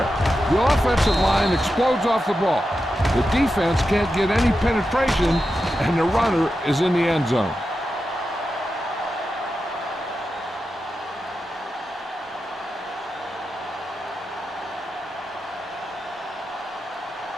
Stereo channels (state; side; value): normal; both; correlation 0.90